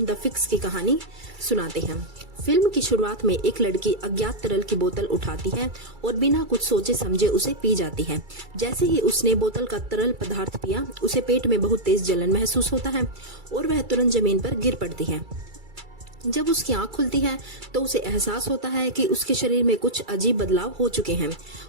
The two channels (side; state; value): left; late; 2.3 ms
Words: द फिक्स की कहानी सुनाते हैं। फिल्म की शुरुआत में एक लड़की अज्ञात तरल की बोतल उठाती है और बिना कुछ सोचे समझे उसे पी जाती है। जैसे ही उसने बोतल का तरल पदार्थ पिया, उसे पेट में बहुत तेज जलन महसूस होता है और वह तुरंत जमीन पर गिर पड़ती है। जब उसकी आंख खुलती है तो उसे एहसास होता है कि उसके शरीर में कुछ अजीब बदलाव हो चुके हैं।